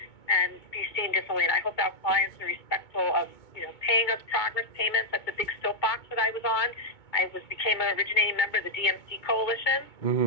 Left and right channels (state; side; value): late; right; 2.2 ms